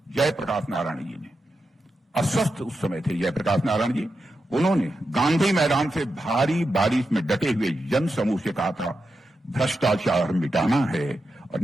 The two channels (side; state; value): both; normal; correlation 0.88